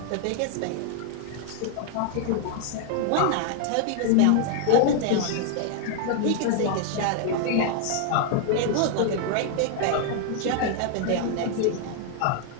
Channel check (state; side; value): different; both; correlation 0.00